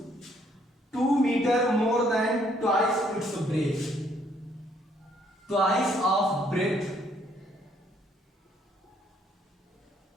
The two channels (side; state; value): both; normal; correlation 0.67